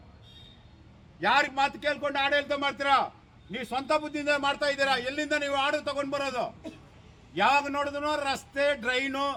ಯಾರಿಗೆ ಮಾತು ಕೇಳ್ಕೊಂಡು ಆಡಳಿತ ಮಾಡ್ತೀರಾ? ನೀವು ಸ್ವಂತ ಬುದ್ಧಿಯಿಂದ ಮಾಡ್ತಾ ಇದ್ದೀರಾ. ಎಲ್ಲಿಂದ ನೀವು ಆರ್ಡರ್ ತಗೊಂಡು ಬರೋದು? ಯಾವಾಗ ನೋಡಿದ್ರು ರಸ್ತೆ, ಡ್ರೈನು,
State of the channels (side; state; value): both; identical; correlation 1.00